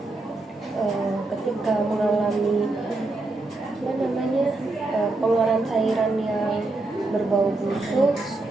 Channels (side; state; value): left; quieter; 3.1 dB